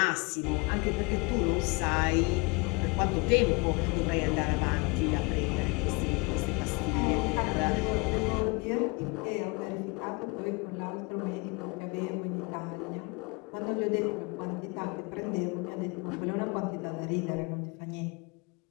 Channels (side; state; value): right; quieter; 28.9 dB